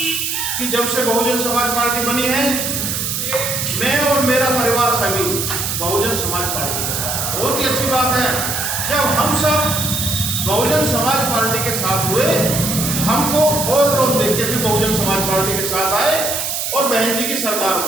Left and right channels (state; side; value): noise; right; hiss, 2 dB below the sound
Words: कि जब से बहुजन समाज पार्टी बनी है, मैं और मेरा परिवार सभी बहुजन समाज पार्टी के साथ। बहुत ही अच्छी बात है, जब हम सब बहुजन समाज पार्टी के साथ हुए, हमको और लोग देख के भी बहुजन समाज पार्टी के साथ आए और बहन जी की सरकार